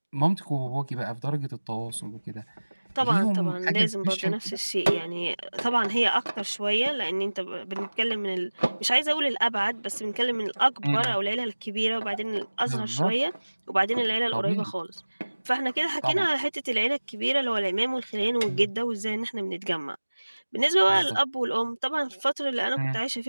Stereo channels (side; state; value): both; inverted; correlation -1.00